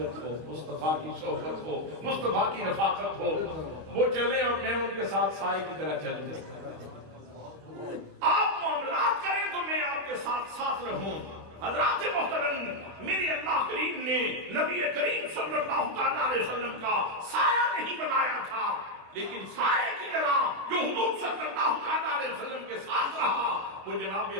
ہو، مصطفیٰ کی صحبت ہو، مصطفیٰ کی رفاقت ہو۔ وہ چلیں اور میں ان کے ساتھ سائے کی طرح چلوں، آپ معاملات کریں تو میں آپ کے ساتھ ساتھ رہوں۔ حضرات محترم، میرے اللہ کریم نے نبی کریم صلی اللہ تعالیٰ علیہ وسلم کا سایہ نہیں بنایا تھا، لیکن سائے کی طرح جو حضور صلی اللہ تعالیٰ علیہ وسلم کے ساتھ رہا وہ جناب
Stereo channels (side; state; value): left; late; 25 ms